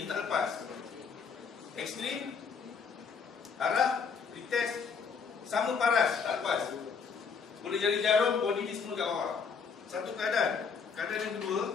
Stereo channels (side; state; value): right; quieter; 5.8 dB